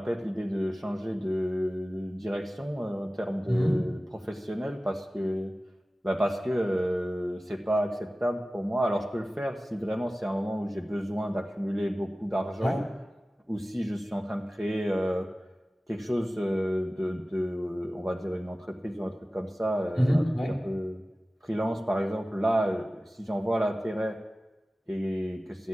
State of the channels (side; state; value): both; normal; correlation 0.97